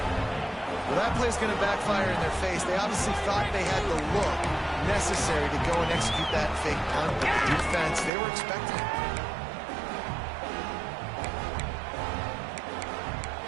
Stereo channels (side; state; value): left; drops out; at 8.1 s